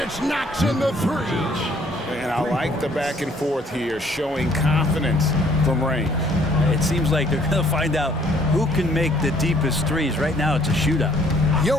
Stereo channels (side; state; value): both; normal; correlation 0.62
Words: knocks in the 3. And I like the back and forth here, showing confidence from range. It seems like they're going to find out who can make the deepest threes. Right now, it's a shootout.